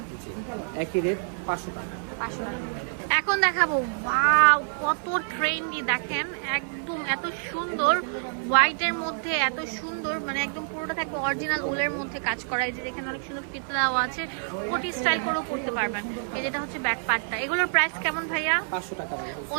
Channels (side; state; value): left; silent; 55 dB below the other